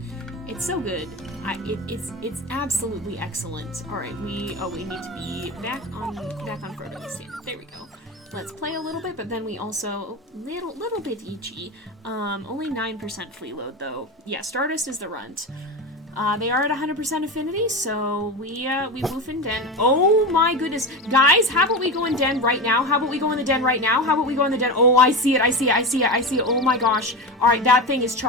It's so good. It's absolutely excellent. All right, we need to be back on Frodo standard. There we go. Let's play a little bit, but then we also little bit itchy. Only 9% flea load though. Yeah, Stardust is the runt. They are at 100% affinity, so we woof in den. Oh my goodness. Guys, how about we go in den right now? How about we go in the den right now? How about we go in the den? Oh, I see it. Oh my gosh. Alright, that thing is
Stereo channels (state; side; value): normal; both; correlation 0.22